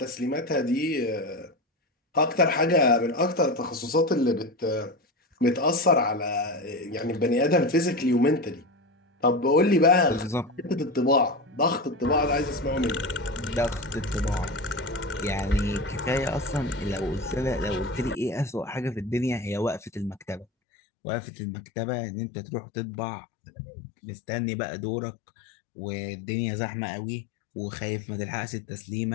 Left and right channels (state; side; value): drops out; right; at 20.5 s